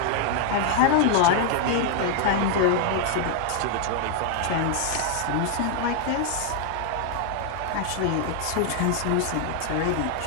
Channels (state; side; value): different; both; correlation 0.00